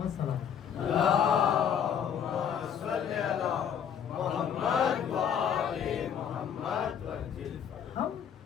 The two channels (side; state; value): right; quieter; 8.3 dB